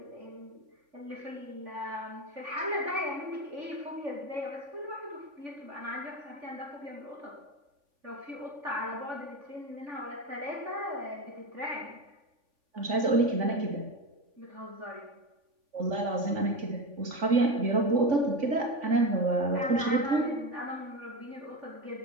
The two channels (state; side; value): late; left; 3.5 ms